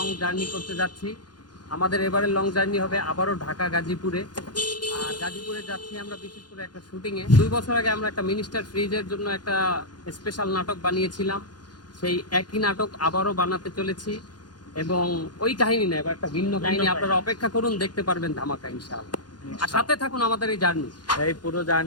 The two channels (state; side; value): late; right; 0.70 ms